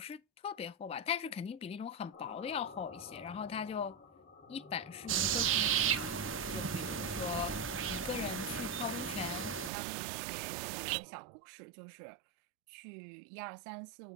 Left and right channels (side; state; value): left; drops out; at 9.7 s